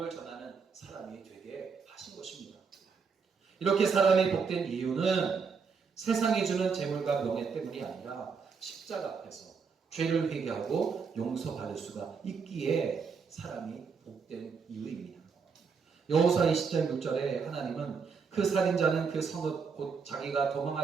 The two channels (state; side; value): quieter; left; 5.6 dB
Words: 전하는 사람이 되게 하신 것입니다. 이렇게 사람이 복된 이유는 세상이 주는 재물과 명예 때문이 아니라 십자가 앞에서 죄를 회개하고 용서받을 수가 있기에 사람이 복된 이유입니다. 여호수아 20장 6절에 하나님은 그 살인자는 그 성읍 곧 자기가